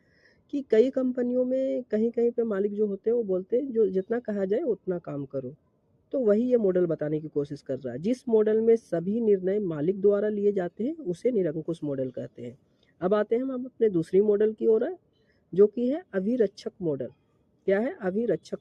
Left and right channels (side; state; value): both; identical; correlation 1.00